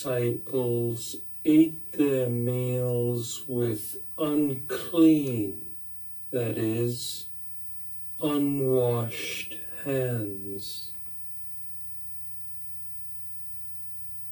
ate their meals with unclean, that is, unwashed hands.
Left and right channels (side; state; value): right; noise; hum, 30 dB below the sound